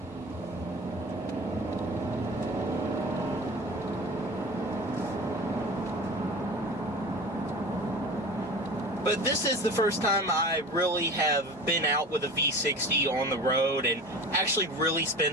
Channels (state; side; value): normal; both; correlation 0.35